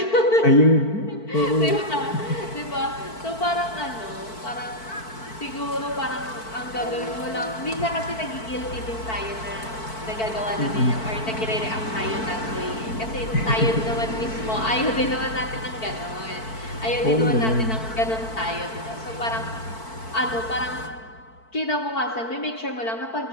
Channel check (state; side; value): late; right; 4.5 ms